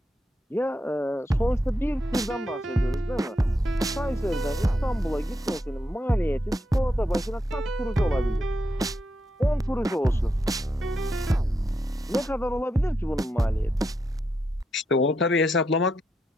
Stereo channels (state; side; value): normal; both; correlation 0.83